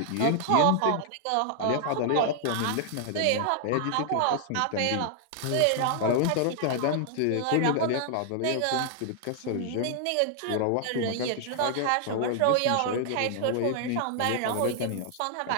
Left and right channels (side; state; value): both; different; correlation 0.00